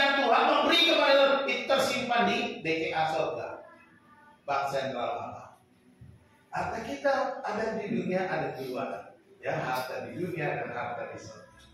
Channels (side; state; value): both; identical; correlation 1.00